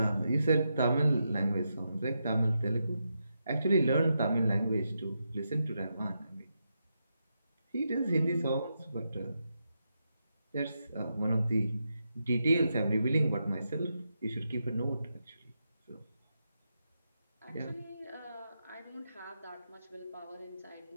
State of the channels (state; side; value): inverted; both; correlation -0.85